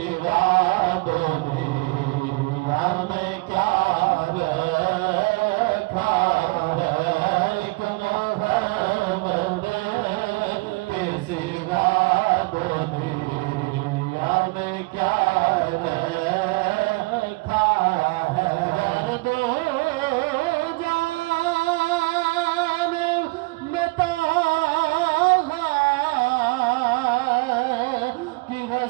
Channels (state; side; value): quieter; left; 25.5 dB